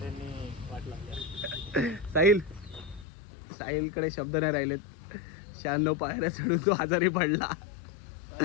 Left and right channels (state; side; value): drops out; right; at 3.1 s